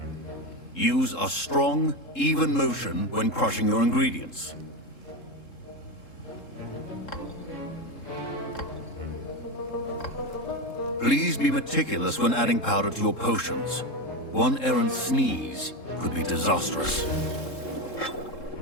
Use a strong, even motion when crushing your ingredients. Please be meticulous when adding powder to your potions. One errant sneeze could be disastrous.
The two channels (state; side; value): late; right; 3.7 ms